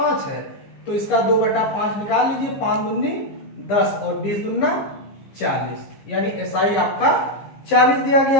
है, तो इसका 2/5 निकाल लीजिए। 5 दूनी 10 और 20 दूना 40, यानी SI आपका 40 दिया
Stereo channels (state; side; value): late; right; 15 ms